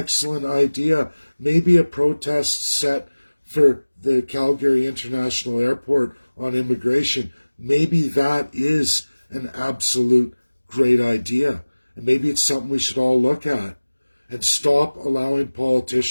idea. Maybe a protest set for the Calgary International Airport on immigration. Maybe that is an absolute great idea. And maybe it's something we should all look at and stop allowing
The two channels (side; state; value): both; inverted; correlation -1.00